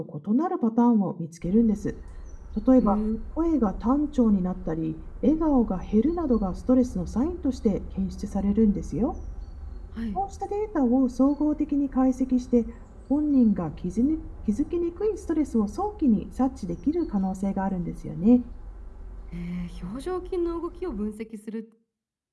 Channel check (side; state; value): both; identical; correlation 1.00